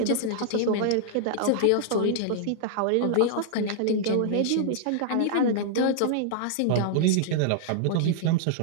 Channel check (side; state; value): both; different; correlation -0.01